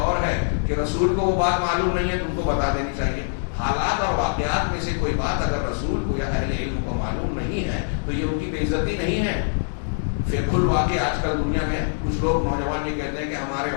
ہے کہ رسول کو وہ بات معلوم نہیں ہے تو ان کو بتا دینی چاہیے. حالات اور واقعات میں سے کوئی بات اگر رسول کو یا اہل علم کو معلوم نہیں ہے تو یہ ان کی بے عزتی نہیں ہے. فقہ الواقع آج کل دنیا میں کچھ لوگ نوجوان یہ کہتے ہیں کہ ہمارے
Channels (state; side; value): silent; right; 63 dB below the other